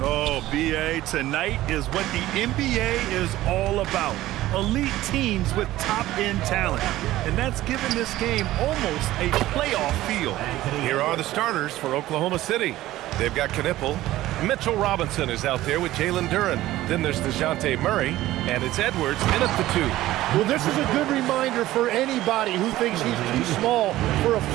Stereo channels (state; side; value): quieter; left; 15.6 dB